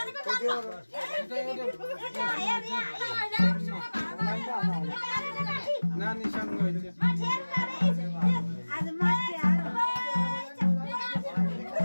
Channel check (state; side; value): inverted; both; correlation -1.00